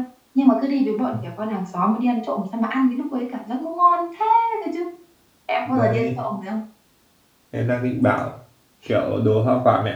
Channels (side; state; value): both; identical; correlation 1.00